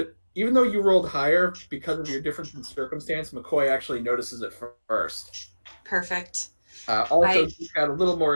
even though you rolled higher because of your difference in circumstance, McCoy actually notices it first. Perfect. Also, you've got a little more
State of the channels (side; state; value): both; inverted; correlation -1.00